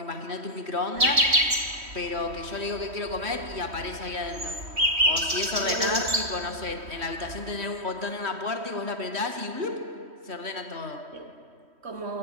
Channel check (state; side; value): late; left; 3.1 ms